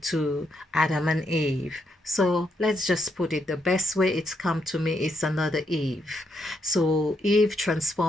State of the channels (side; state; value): both; normal; correlation 0.78